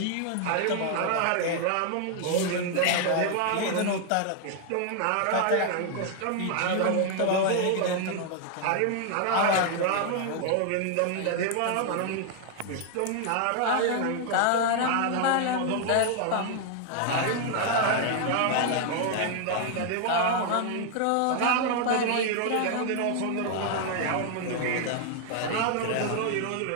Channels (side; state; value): both; different; correlation 0.00